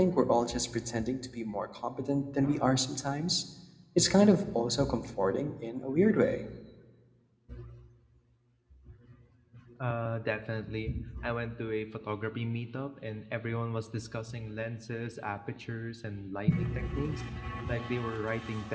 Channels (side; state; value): both; identical; correlation 1.00